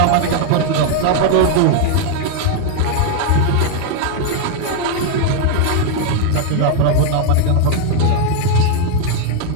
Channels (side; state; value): both; different; correlation 0.00